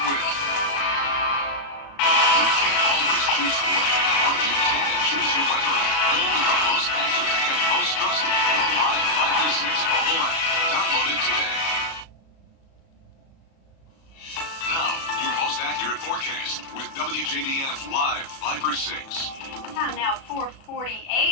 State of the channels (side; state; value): right; late; 36 ms